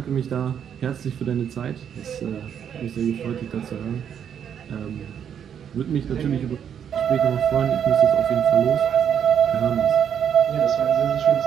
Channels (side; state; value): left; quieter; 8.5 dB